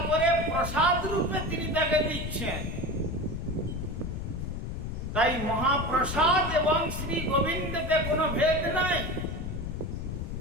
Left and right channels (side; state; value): left; noise; rumble, 4 dB below the sound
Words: করে প্রসাদ রূপে তিনি তাকে দিচ্ছেন। তাই মহাপ্রসাদ এবং শ্রী গোবিন্দতে কোনো ভেদ নাই।